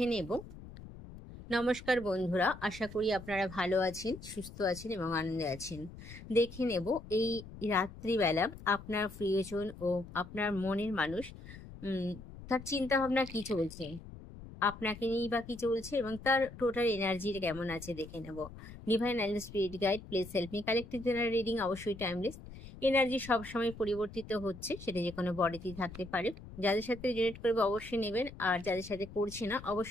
নেব। নমস্কার বন্ধুরা, আশা করি আপনারা ভালো আছেন, সুস্থ আছেন এবং আনন্দে আছেন। দেখে নেব এই রাত্রিবেলা আপনার প্রিয়জন ও আপনার মনের মানুষ তার চিন্তা ভাবনা কি চলছে, আপনাকে নিয়েই বা কি চলছে এবং তার টোটাল এনার্জি কেমন আছে দেখে নেব। Divine and spirit guide, please help me. Collective general reading অবশ্যই টাইমলেস। এনার্জি সবসময় পরিবর্তিত হচ্ছে, সেটা যে কোনো বডিতেই থাকতে পারে। যাদের সাথে রিলেট করবে অবশ্যই নেবেন, আর যাদের সাথে করছে না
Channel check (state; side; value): noise; left; rumble, 15 dB below the sound